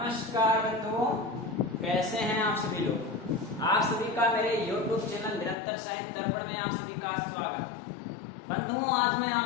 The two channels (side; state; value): right; drops out; at 5.6 s